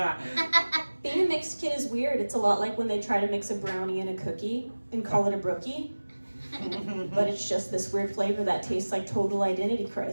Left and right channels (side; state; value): both; inverted; correlation -1.00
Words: Being a mixed kid is weird. It's a lot like when they try to mix a brownie and a cookie and call it a brookie. But it's just this weird flavor that tastes like total identity